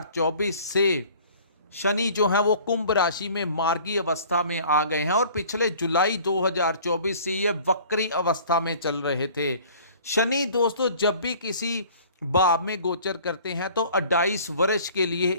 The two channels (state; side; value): inverted; both; correlation -0.50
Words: से शनि जो है वो कुंभ राशि में मार्गी अवस्था में आ गए हैं और पिछले जुलाई 2024 से ये वक्री अवस्था में चल रहे थे। शनि दोस्तों जब भी किसी भाव में गोचर करते हैं तो 28 वर्ष के लिए